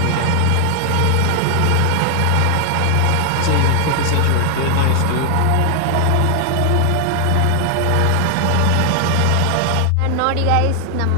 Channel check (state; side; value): different; both; correlation 0.00